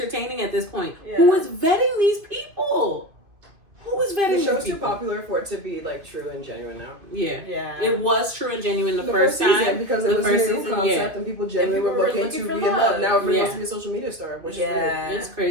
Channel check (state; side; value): late; left; 2.4 ms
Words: at this point. Yeah. Who is vetting these people? Who is vetting The these show's too people? popular for it to be like true and genuine now. Yeah. Yeah. It was true and genuine the first season, time. because The it was a first new season, concept yeah. and people genuinely people were were looking looking to for be in love. love. Now everybody Yeah. wants to be a social media star, which Yeah. It's